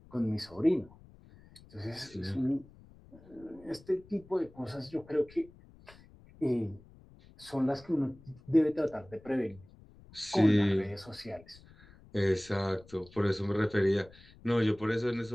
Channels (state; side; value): noise; left; rumble, 23 dB below the sound